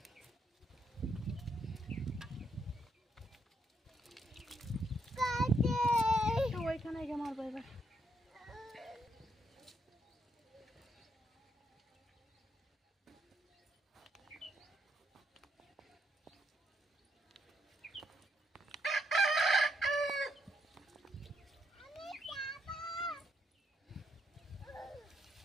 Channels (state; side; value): normal; both; correlation 0.76